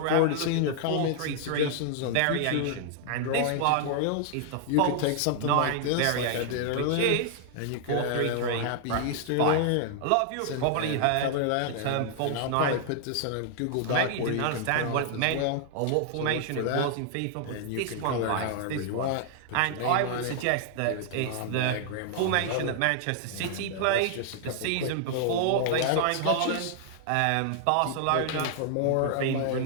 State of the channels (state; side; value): different; both; correlation 0.00